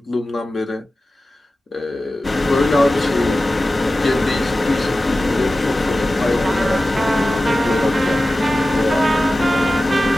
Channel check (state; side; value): normal; both; correlation 0.95